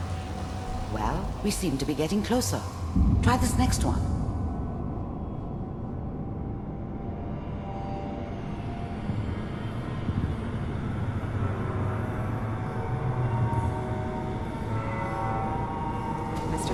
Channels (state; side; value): identical; both; correlation 1.00